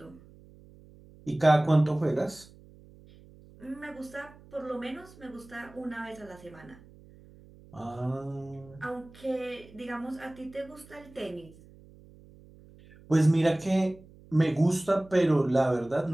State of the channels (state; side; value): noise; right; hum, 23 dB below the sound